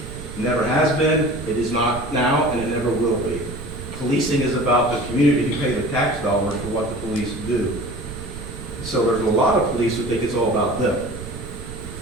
It never has been, it is not now, and it never will be. Policing is about the community who pay the tax dollars for what the police do. So there's a lot of police who think it's all about them.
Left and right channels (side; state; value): right; noise; rumble, 12 dB below the sound